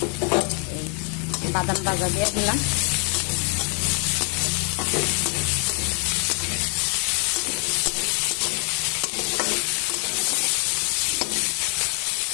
বাদাম ভাজা দিয়ে দিলাম।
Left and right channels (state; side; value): quieter; right; 37.9 dB